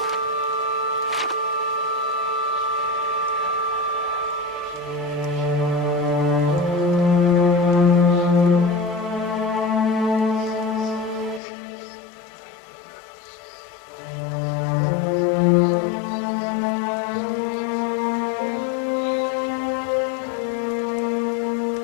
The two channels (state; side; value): drops out; right; at 11.4 s